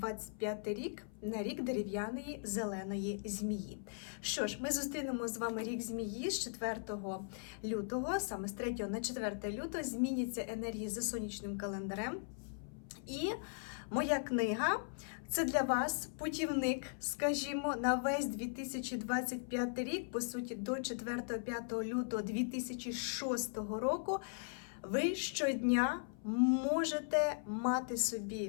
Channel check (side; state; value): right; silent; 52 dB below the other